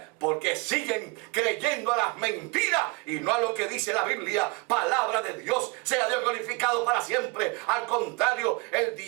Porque siguen creyendo a las mentiras y no a lo que dice la Biblia, palabra de Dios. Sea Dios glorificado para siempre. Al contrario, el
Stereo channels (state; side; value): quieter; left; 26.6 dB